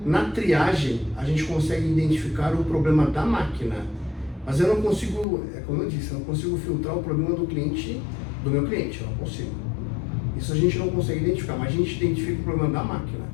Na triagem, a gente consegue identificar o problema da máquina, mas eu não consigo, como eu disse, eu não consigo filtrar o problema do cliente, do meu cliente, eu não consigo. Isso a gente não consegue identificar, mas a gente identifica o problema da máquina.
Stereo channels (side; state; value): right; drops out; at 5.2 s